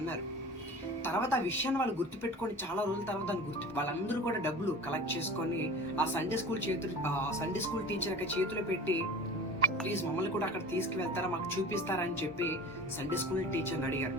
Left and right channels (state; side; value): normal; both; correlation 0.37